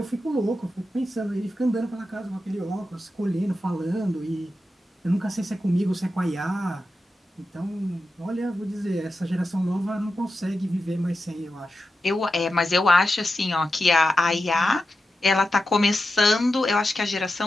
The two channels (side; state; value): both; normal; correlation 0.90